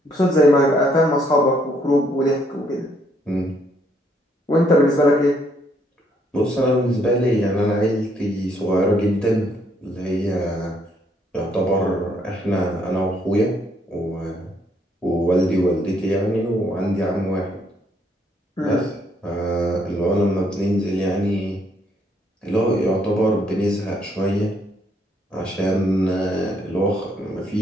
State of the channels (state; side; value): normal; both; correlation 0.70